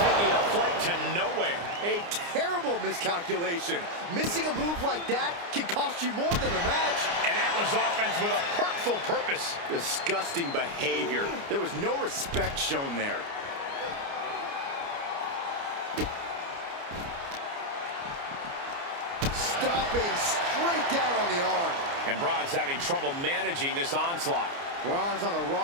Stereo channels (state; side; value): late; left; 29 ms